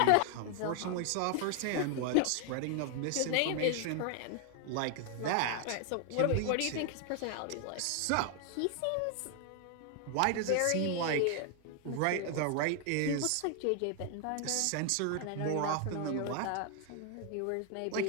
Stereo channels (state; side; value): different; both; correlation 0.00